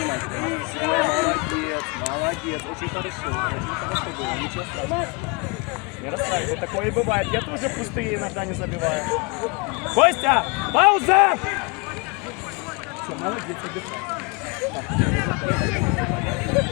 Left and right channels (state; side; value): quieter; right; 29.1 dB